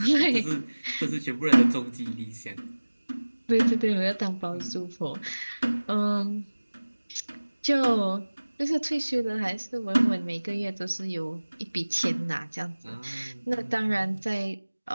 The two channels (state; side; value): inverted; both; correlation -1.00